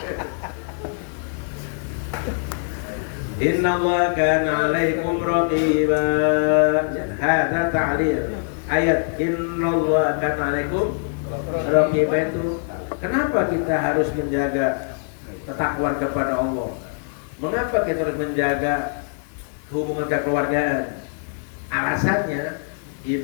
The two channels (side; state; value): right; silent; 64 dB below the other